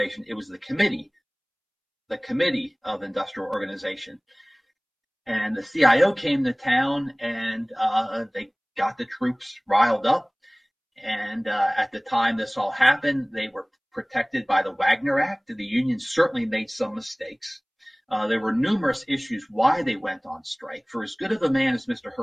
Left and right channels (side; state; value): both; identical; correlation 1.00